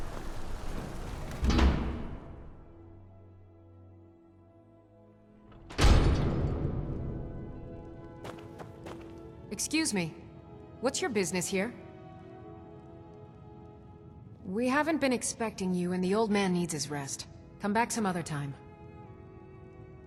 Excuse me. What's your business here? We haven't been expecting you, and the old man needs his rest. Come back some other time.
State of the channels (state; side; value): identical; both; correlation 1.00